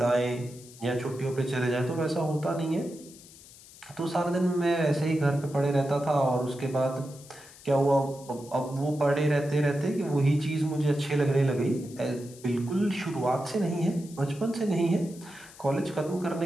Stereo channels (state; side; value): noise; left; hiss, 20 dB below the sound